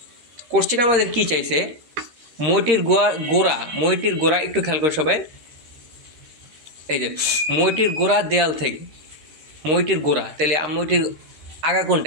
কোশ্চেন আমাদের কি চাইছে? মইটির গোড়া একটু খেয়াল করে সবাই। এই যে মইটির গোড়া দেয়াল থেকে, মইটির গোড়া, তাহলে মইটির আগা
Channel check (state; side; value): late; left; 13 ms